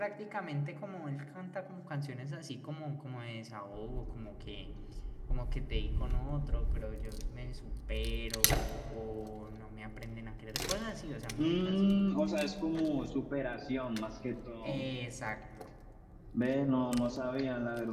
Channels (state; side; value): identical; both; correlation 1.00